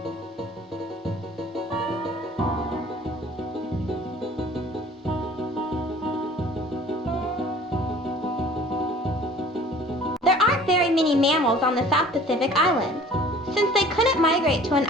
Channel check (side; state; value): both; normal; correlation 0.49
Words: There aren't very many mammals on the South Pacific Islands. Since they couldn't migrate to an